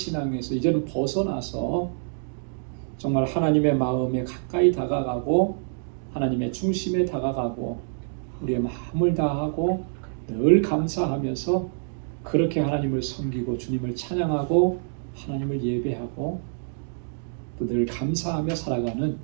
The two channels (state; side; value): silent; left; digital silence